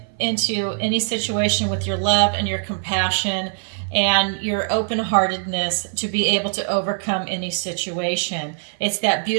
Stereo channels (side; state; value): left; silent; 57 dB below the other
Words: into any situation with your love and your compassion and your open-heartedness to be able to overcome any situation. It's that